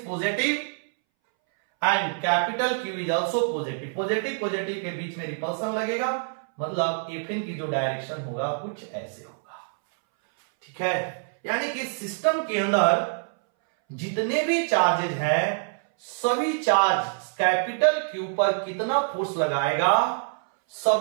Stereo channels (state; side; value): silent; left; 61 dB below the other